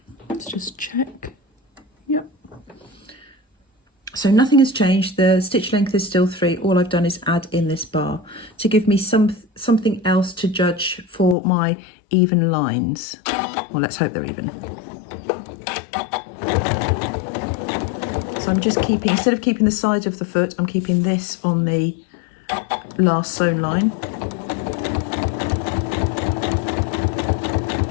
Let's just check. Yep. So nothing has changed. The stitch length is still 3. All I've done is add in this bar to give me something else to judge for my even lines. Well, let's hope they're even. So I'm just keeping, instead of keeping the side of the foot, I'm keeping this on the last sewn line.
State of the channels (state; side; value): drops out; right; at 11.4 s